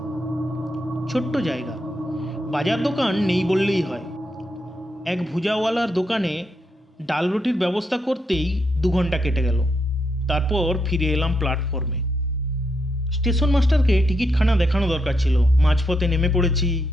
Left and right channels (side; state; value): both; normal; correlation 0.80